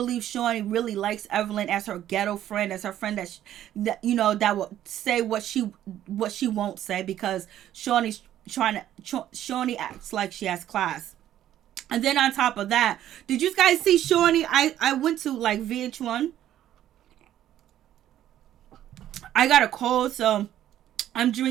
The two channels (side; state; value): left; quieter; 12.0 dB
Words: Shawnee really likes Evelyn as her ghetto friend, as her friend that you know, that will say what she won't say, because Shawnee acts like she has class. And then on top of that, did you guys see Shawnee? I went to like VH1. I got a cold, so I'm